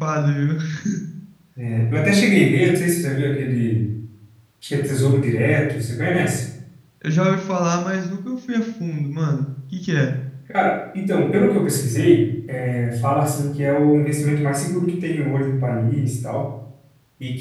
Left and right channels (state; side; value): identical; both; correlation 1.00